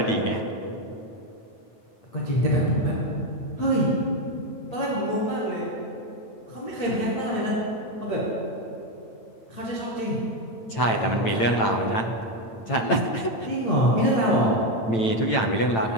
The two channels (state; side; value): late; right; 9.0 ms